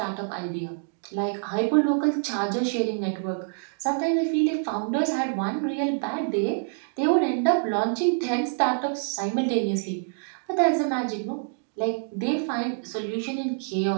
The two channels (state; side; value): silent; left; digital silence